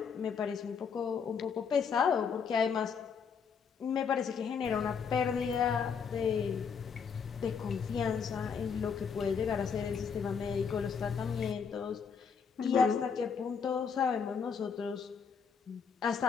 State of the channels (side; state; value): right; quieter; 6.4 dB